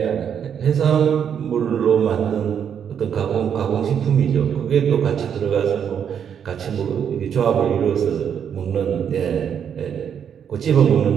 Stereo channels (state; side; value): quieter; left; 8.1 dB